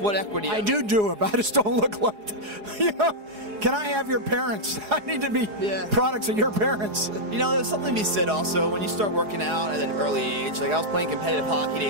equity. I do it, but I just don't look like that. You know? Can I have your parents? I need to be products of your parents. You know, there's something to be said also when you start working out at an early age. Like I was playing competitive hockey at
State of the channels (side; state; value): left; late; 4.8 ms